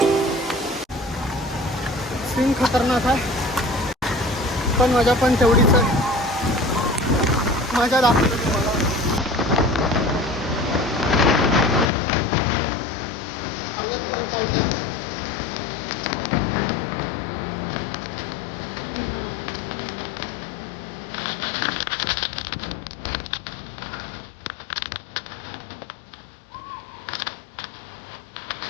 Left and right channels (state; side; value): drops out; right; at 11.9 s